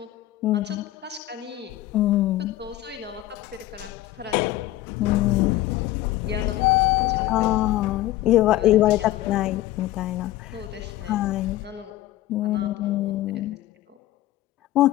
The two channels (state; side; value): quieter; right; 15.1 dB